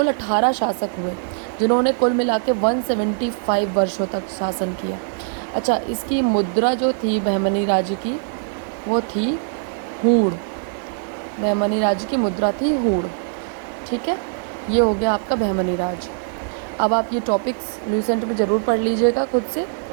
18 शासक हुए, जिन्होंने कुल मिला के 175 वर्षों तक शासन किया। अच्छा, इसकी मुद्रा जो थी बहमनी राज्य की वो थी हूड़। बहमनी राज्य की मुद्रा थी हूड़। ठीक है, ये हो गया आपका बहमनी राज्य। अब आप ये टॉपिक्स लुसेंट में ज़रूर पढ़ लीजिएगा खुद से,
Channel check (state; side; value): silent; left; digital silence